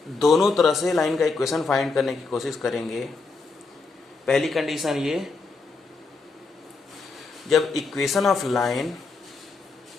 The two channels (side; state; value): right; quieter; 4.1 dB